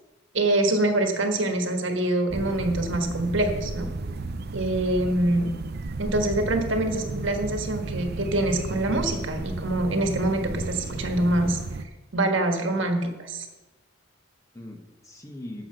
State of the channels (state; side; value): normal; both; correlation 0.41